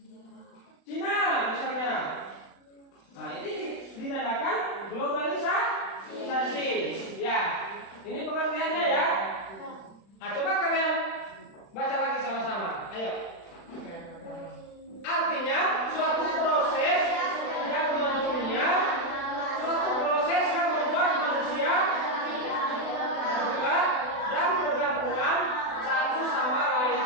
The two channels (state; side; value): late; right; 36 ms